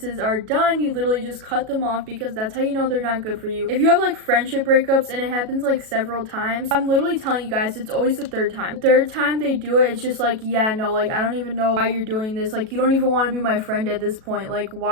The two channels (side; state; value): left; late; 37 ms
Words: are done, you literally just cut them off because that's how you know they're not good for you. If you have like friendship breakups and it happens like several times, I'm literally telling you guys, it's always the 3rd time. The 3rd time they do it, it's just like, yeah, no, like, I don't even know why you're doing this. Like, you don't even want to be my friend at this point. Like,